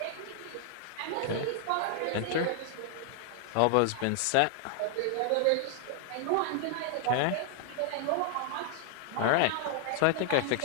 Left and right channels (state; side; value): different; both; correlation 0.00